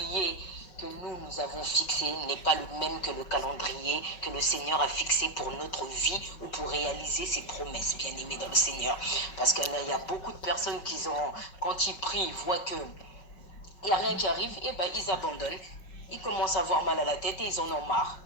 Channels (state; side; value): late; right; 5.5 ms